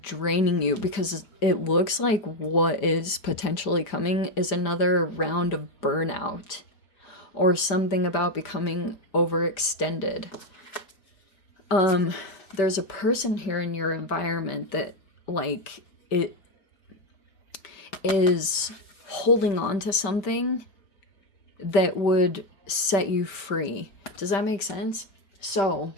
draining you, because it looks like what is potentially coming is another round of burnout or something about becoming overextended. There's a person here in your environment that like it is holding on to something that would set you free. Does that make sense? So,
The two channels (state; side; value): late; right; 5.1 ms